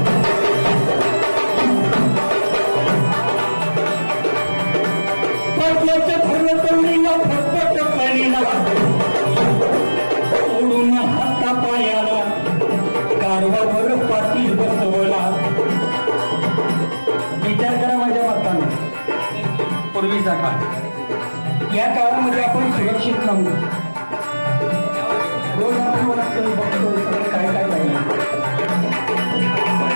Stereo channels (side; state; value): both; inverted; correlation -1.00